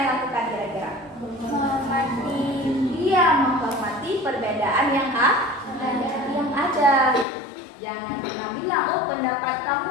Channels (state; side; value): drops out; right; at 7.2 s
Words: lakukan kira-kira? Menghormati. Dia menghormati perbedaan yang ada. Jangan pernah bilang, oh pendapat